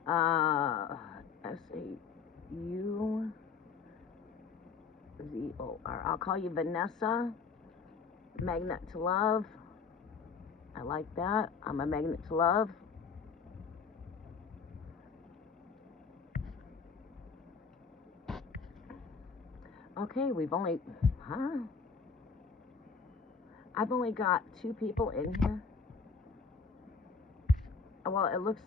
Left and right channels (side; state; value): right; quieter; 5.4 dB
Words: S-A-U-Z-O-R. I'll call you Vanessa. Magnet to love. I like that. I'm a magnet to love. Okay, we've only, I've only got 2 people in here. Well, it looks,